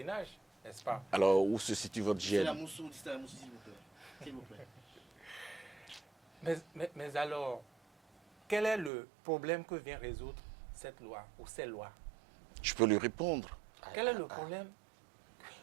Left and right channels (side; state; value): left; drops out; at 8.9 s